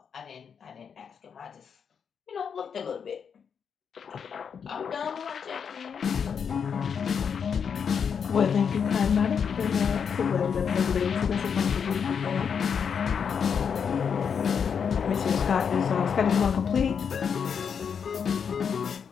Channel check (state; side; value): quieter; right; 6.8 dB